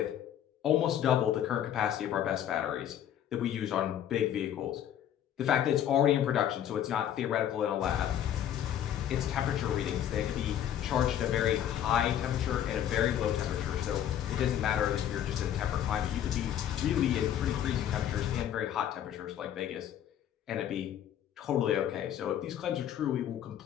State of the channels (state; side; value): quieter; right; 10.5 dB